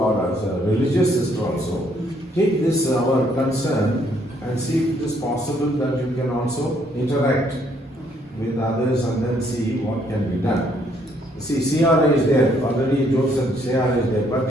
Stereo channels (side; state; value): both; normal; correlation 0.68